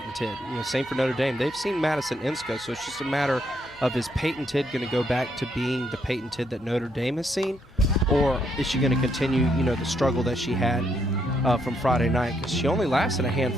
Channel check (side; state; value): both; normal; correlation 0.75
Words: Tidd. You know, same for Notre Dame. They've seen Madison Insco, so it's just a matter of, is Payton Tidd going to go back to being the Payton Tidd that Notre Dame has seen, or is she going to continue, you know, the struggle that she had from Friday night? Because she only lasted a